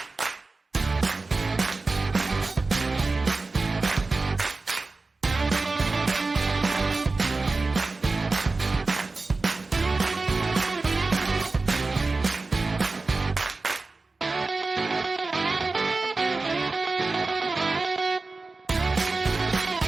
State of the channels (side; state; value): left; quieter; 3.6 dB